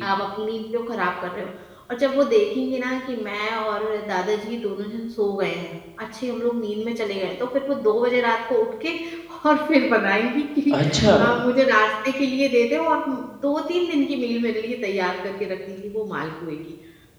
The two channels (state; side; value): identical; both; correlation 1.00